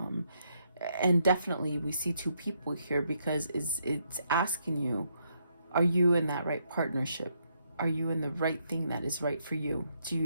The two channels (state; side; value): inverted; both; correlation -0.76